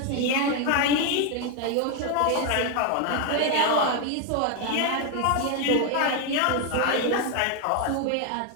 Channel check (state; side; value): different; both; correlation 0.01